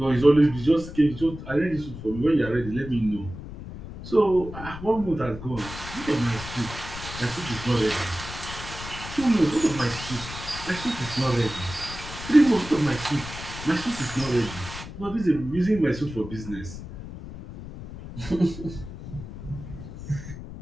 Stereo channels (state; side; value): noise; left; rumble, 11 dB below the sound